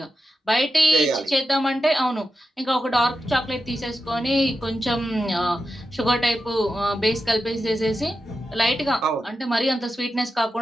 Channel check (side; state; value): both; normal; correlation 0.90